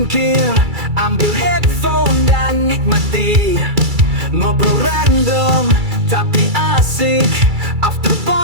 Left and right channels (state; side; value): late; left; 2.3 ms